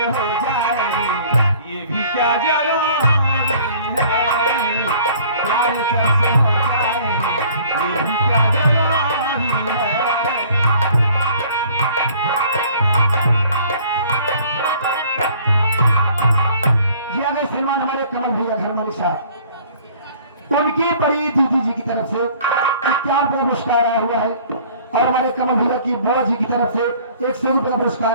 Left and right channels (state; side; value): inverted; both; correlation -0.53